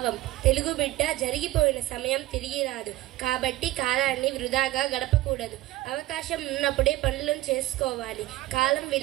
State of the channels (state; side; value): quieter; left; 16.8 dB